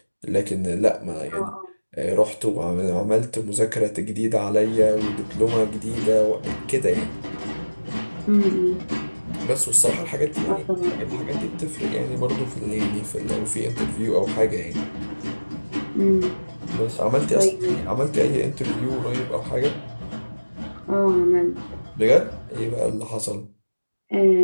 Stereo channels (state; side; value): inverted; both; correlation -1.00